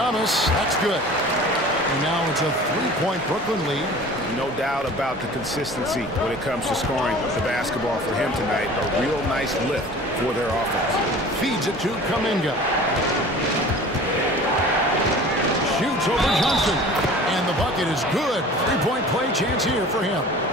that's good. And now it's a 3-point Brooklyn lead. No doubt about the consistency when it comes to scoring the basketball for him tonight. A real nice lift for their offense. Feeds it to Kuminga. Shoots over Johnson. And the bucket is good. 3-point play chance here for him.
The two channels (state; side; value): normal; both; correlation 0.43